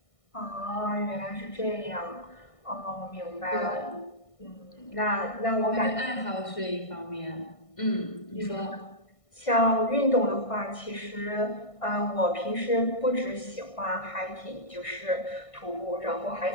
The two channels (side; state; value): right; late; 1.6 ms